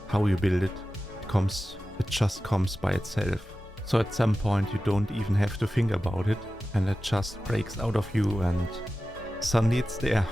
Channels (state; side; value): normal; both; correlation 0.94